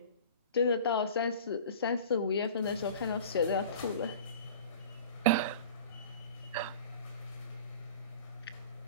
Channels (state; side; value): inverted; both; correlation -0.41